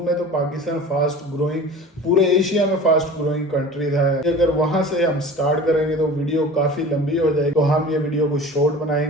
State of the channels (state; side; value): normal; both; correlation 0.39